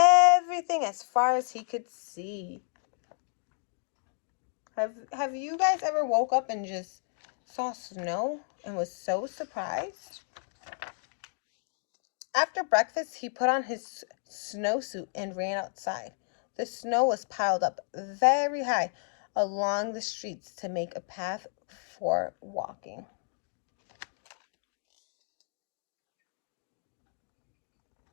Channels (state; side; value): silent; right; 57 dB below the other